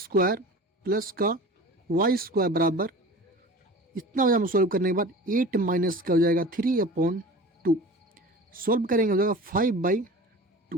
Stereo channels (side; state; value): both; normal; correlation 0.38